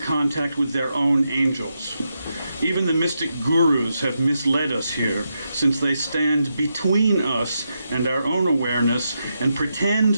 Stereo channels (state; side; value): inverted; both; correlation -0.85